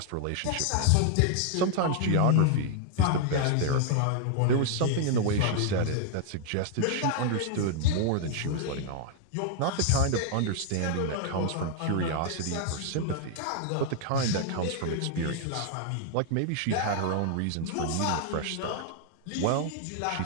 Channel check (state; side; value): different; both; correlation 0.00